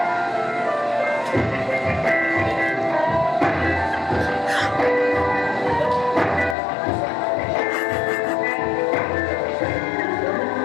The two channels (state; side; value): drops out; right; at 6.6 s